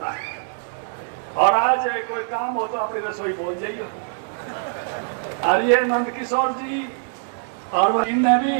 है। और आज कोई काम हो तो अपनी रसोई बोल जाइए। और ये नंदकिशोर जी और इनने भी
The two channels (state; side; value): silent; left; digital silence